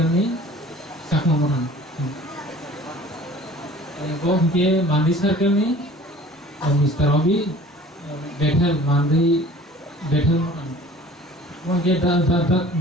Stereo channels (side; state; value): both; normal; correlation 0.47